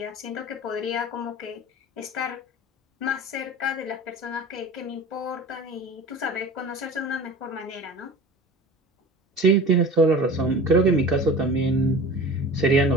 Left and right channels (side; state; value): both; normal; correlation 0.39